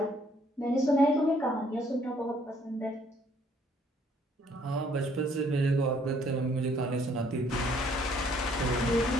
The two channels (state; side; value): normal; both; correlation 0.64